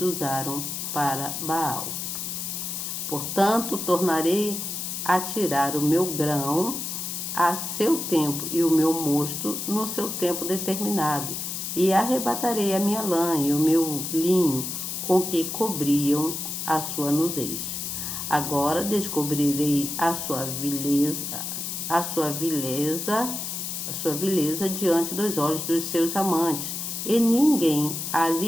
usaram para Baal. Portanto, tornarei a tirar o meu grão a seu tempo, e o meu mosto no seu tempo determinado, e arrebatarei a minha lã e o meu linho, com que cobriam a sua nudez. Agora descobrirei a sua vileza diante dos olhos dos seus amantes, e ninguém a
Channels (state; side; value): noise; left; hiss, 4 dB below the sound